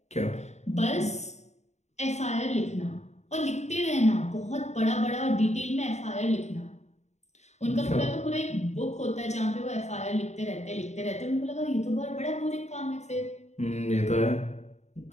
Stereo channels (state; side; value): late; right; 0.33 ms